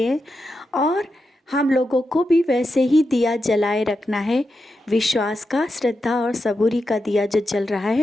हैं। और हम लोगों को भी वैसे ही दिया जलाए रखना है। विश्वास का, श्रद्धा और सबूरी का दिया जो जल रहा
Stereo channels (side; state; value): both; normal; correlation 0.88